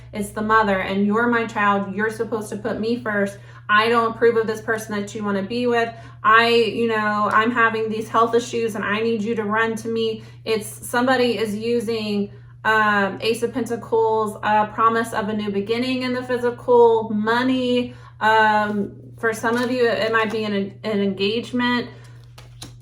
it's the mother and you're my child, you're supposed to put me first. I don't approve of this person that you want to be with. I'm having these health issues and I need you to run to me. It's somebody is using Ace of Pentacles, promise of a new beginning in the physical, money. For some of you, it might be an engagement.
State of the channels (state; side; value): identical; both; correlation 1.00